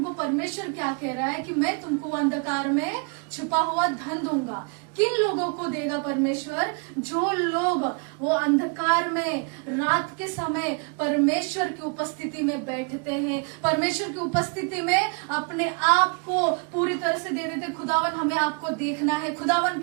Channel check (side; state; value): left; quieter; 36.3 dB